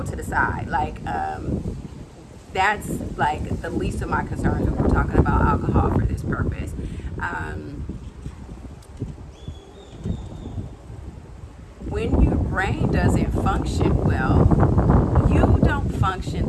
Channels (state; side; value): identical; both; correlation 1.00